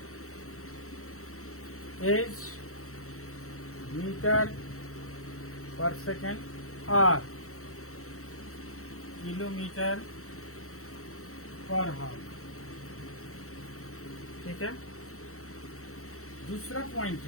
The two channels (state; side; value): late; right; 0.64 ms